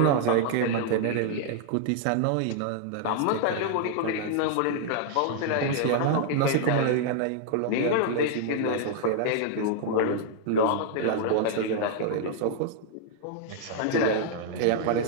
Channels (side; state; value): both; different; correlation -0.01